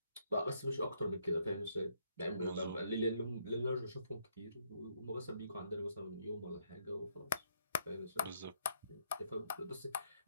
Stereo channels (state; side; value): inverted; both; correlation -0.72